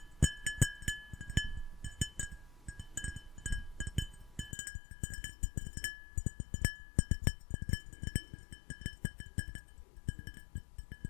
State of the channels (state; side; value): drops out; right; at 4.5 s